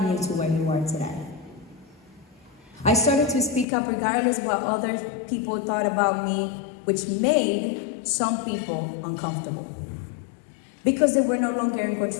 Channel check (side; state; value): right; drops out; at 3.7 s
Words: you to where you are today. I started to speak up regardless of what other people thought about me, which made some people uncomfortable because they were no longer in